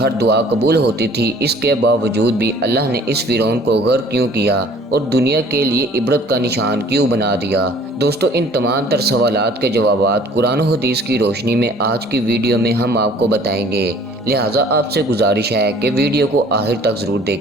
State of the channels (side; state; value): both; normal; correlation 0.53